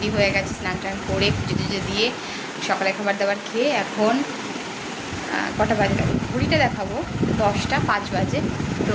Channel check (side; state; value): both; identical; correlation 1.00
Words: হয়ে গেছি, স্নান টান করে পুজো টুজো দিয়ে সকালে খাবার দাবার খেয়ে এখন কটা বাজে ঘড়িটা দেখাবো, 10টা 5 বাজে।